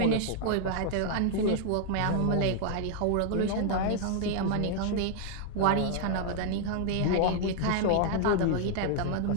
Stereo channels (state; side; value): different; both; correlation 0.00